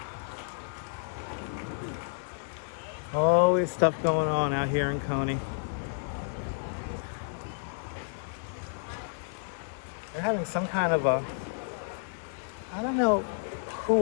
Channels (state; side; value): silent; right; digital silence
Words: Always stuff going on out here in Coney. They're having some kind of a... I don't know,